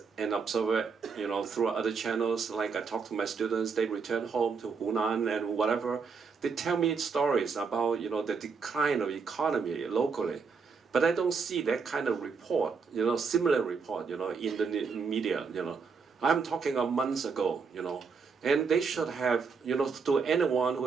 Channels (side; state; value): left; quieter; 5.3 dB